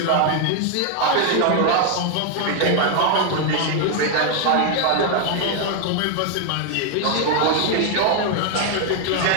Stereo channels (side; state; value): both; different; correlation 0.00